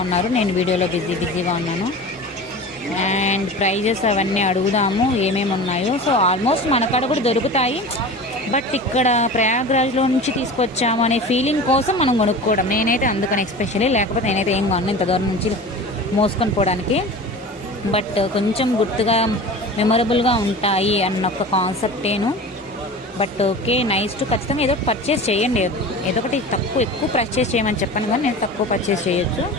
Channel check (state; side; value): normal; both; correlation 0.35